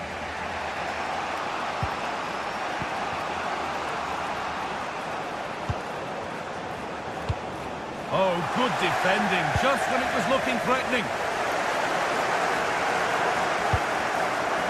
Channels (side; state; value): both; identical; correlation 1.00